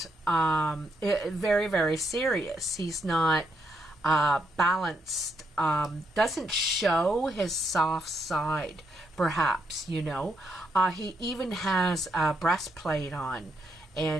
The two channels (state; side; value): normal; both; correlation 0.78